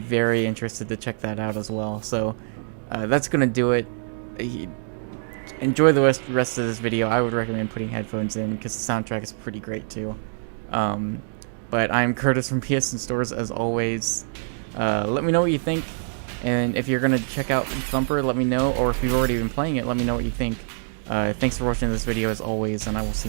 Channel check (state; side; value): silent; left; digital silence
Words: interested to check that out as well. So that's gonna do it. Enjoy the rest of this video. I would recommend putting headphones in because the soundtrack is pretty great too. But I'm Curtis from PSNStores as always. Let me know what you think, and if you're gonna check out Thumper, let me know, or if you've already been playing it, let me know what you think. Thanks for watching this video as always, and I will